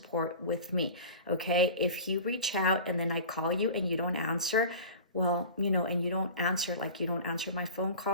with me, okay? If you reach out and then I call you and you don't answer, well, and you don't answer, like you don't answer my phone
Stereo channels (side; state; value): both; inverted; correlation -0.36